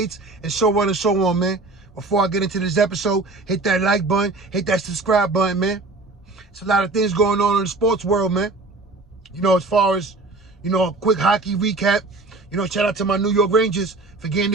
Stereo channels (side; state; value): left; quieter; 3.3 dB